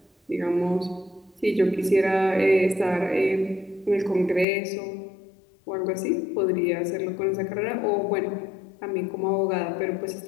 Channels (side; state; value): right; drops out; at 4.5 s